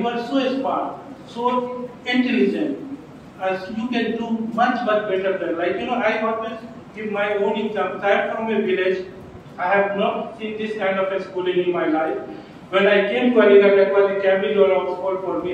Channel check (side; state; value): both; identical; correlation 1.00